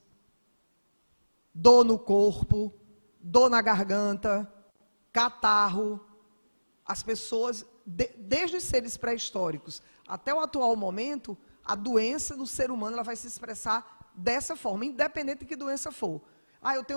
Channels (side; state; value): both; inverted; correlation -1.00